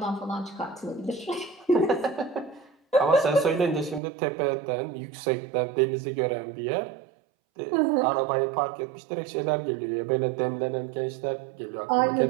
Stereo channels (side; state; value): left; drops out; at 4.0 s